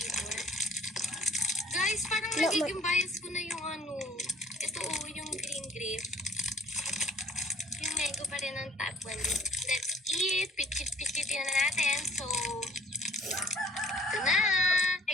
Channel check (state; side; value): normal; both; correlation 0.54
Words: Guys, parang nagiging bias ko na yung ano. Ito yung green grape. Yung mango pa rin ang top 1. Let's eat. Pichit-pichitin na natin. So, ito na.